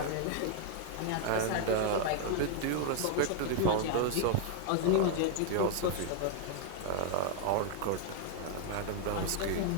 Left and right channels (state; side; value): different; both; correlation 0.00